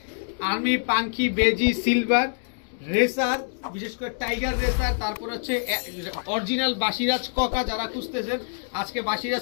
আর্মি, পাঙ্খি, বেজি, সিলভার, রেসার, বিশেষ করে টাইগার রেসার, তারপর হচ্ছে অরিজিনাল বাসিরাজ ককা যারা খুঁজতেছেন, আজকে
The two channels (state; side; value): silent; right; digital silence